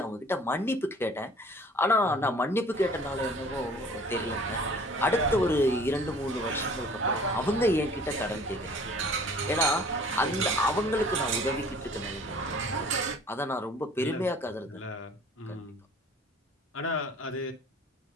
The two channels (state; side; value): normal; both; correlation 0.50